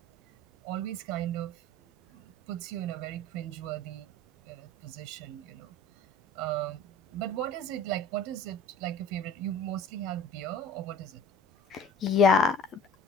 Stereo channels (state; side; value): normal; both; correlation 0.44